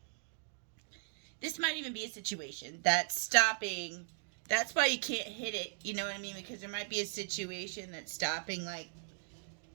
This might even be a situation that's stopping. That's why you can't hit it, you know what I mean? Because there might be a situation that's stopping, like,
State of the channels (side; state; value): left; silent; digital silence